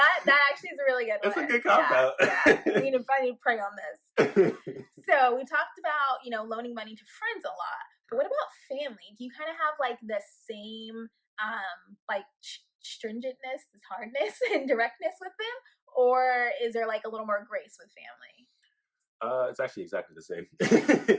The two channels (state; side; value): identical; both; correlation 1.00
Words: actually is a really good one. That's a good cop out. I need to pray on this. So we talked about, loaning money to friends a lot. But what about family? Do you kind of have like the same stringentness, this hardness and directness with them? Or is there like a little more grace with family? It's actually exactly the same.